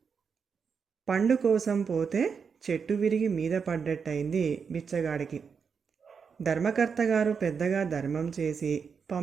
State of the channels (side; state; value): left; quieter; 6.1 dB